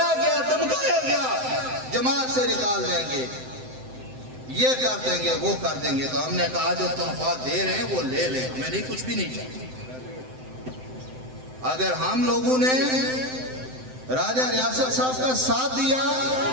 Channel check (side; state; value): left; late; 7.8 ms